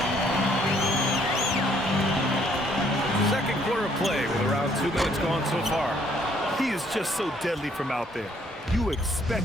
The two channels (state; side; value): normal; both; correlation 0.65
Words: Second quarter of play with around 2 minutes gone so far. He is just so deadly from out there. You